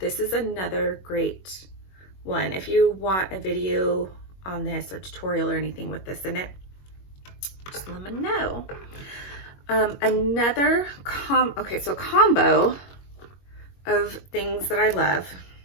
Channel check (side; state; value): right; late; 21 ms